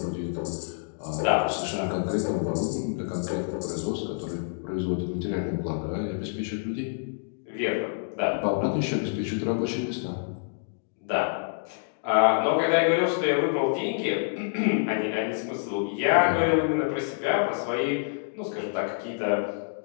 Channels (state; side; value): silent; right; digital silence